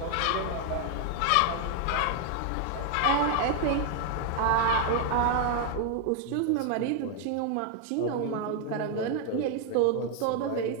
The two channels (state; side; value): different; both; correlation 0.00